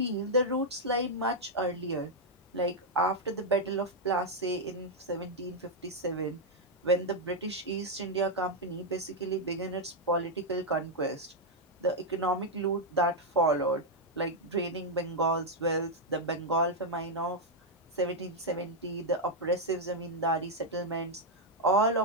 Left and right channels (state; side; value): normal; both; correlation -0.02